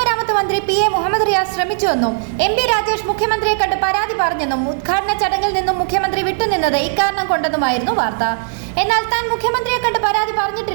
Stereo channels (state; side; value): silent; left; 56 dB below the other